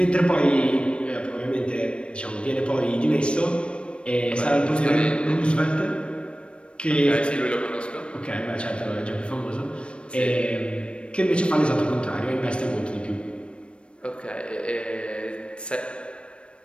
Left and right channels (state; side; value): late; right; 0.058 ms